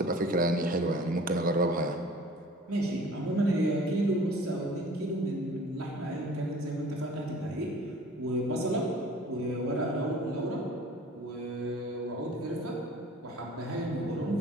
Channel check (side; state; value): both; normal; correlation 0.47